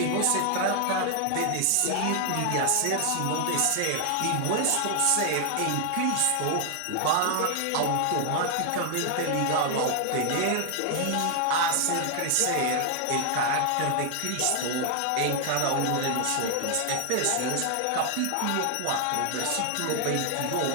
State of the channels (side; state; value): both; different; correlation 0.00